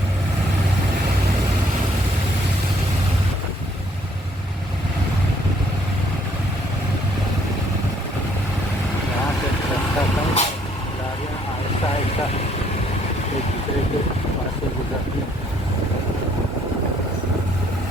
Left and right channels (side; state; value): both; normal; correlation 0.65